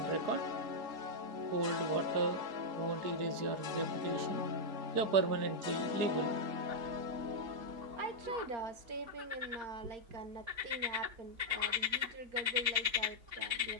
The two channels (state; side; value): late; left; 3.6 ms